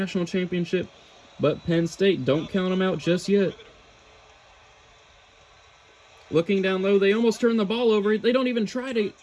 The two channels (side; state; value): both; identical; correlation 1.00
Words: championship. But Penn State, don't count them out just yet. Looking down low, they almost turn the ball over. They don't even try to